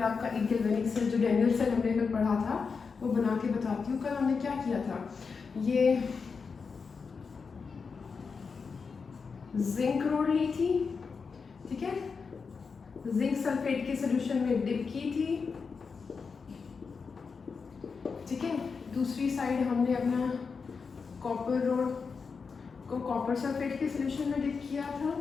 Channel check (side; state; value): right; quieter; 5.2 dB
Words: आपका एक गैल्वेनिक सेल जो डेनियल सेल हमने कल पढ़ा था वो बना के बताती हूँ। कल हमने क्या किया था, ये जिंक रोड ली थी, ठीक है, जिंक सल्फेट के सॉल्यूशन में डिप की थी, ठीक है। दूसरी साइड हमने अपना कॉपर रोड को कॉपर सल्फेट के सॉल्यूशन में डिप किया था,